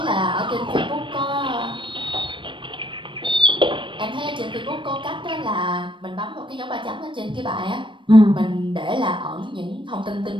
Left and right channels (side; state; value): left; late; 0.24 ms